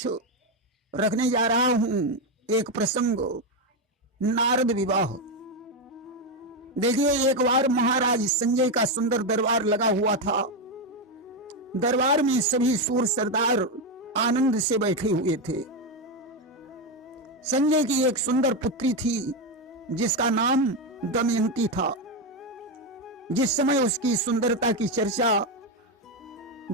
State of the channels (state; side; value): normal; both; correlation 0.08